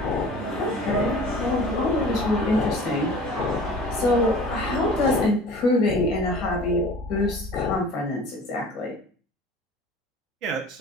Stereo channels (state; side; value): normal; both; correlation 0.43